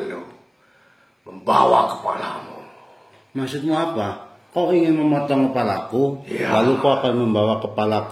membawa kepalamu. Maksudmu apa? Kau ingin memotong kepalaku, Ya. lalu kau akan membawa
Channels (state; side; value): identical; both; correlation 1.00